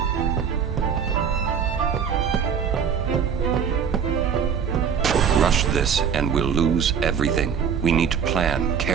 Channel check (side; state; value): left; quieter; 7.2 dB